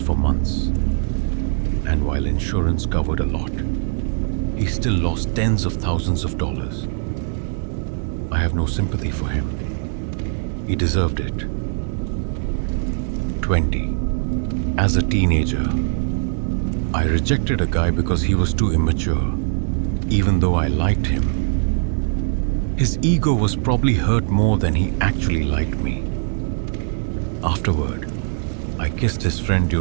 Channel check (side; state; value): left; silent; 65 dB below the other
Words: months, and while insurance covered a lot, he still lost tens of thousands of dollars. I have no sympathy for him. He deserved it. 20. As a teenager, I rejected a guy because he was too immature, even though I liked him. His ego was probably hurt more than he actually liked me. Afterward, I kissed his friend